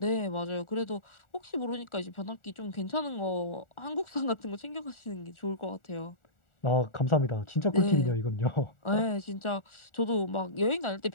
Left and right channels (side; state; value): right; late; 1.4 ms